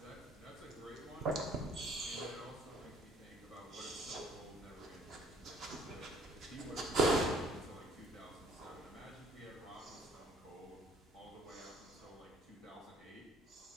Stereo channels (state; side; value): normal; both; correlation 0.58